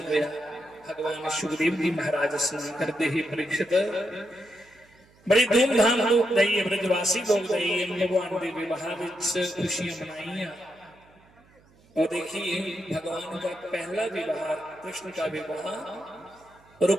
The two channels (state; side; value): noise; right; hum, 30 dB below the sound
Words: होया। भगवान सुखदेव जी महाराज स्नान करते ही परीक्षित बड़ी धूमधाम लोग गई, ब्रजवासी लोग गई, भगवान के विवाह खुशियां मनाई। और देखिए भगवान का पहला विवाह, कृष्ण का विवाह